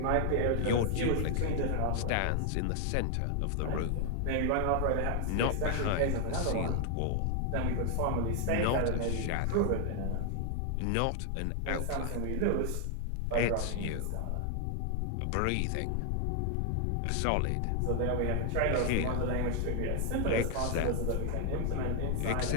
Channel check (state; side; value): different; both; correlation 0.00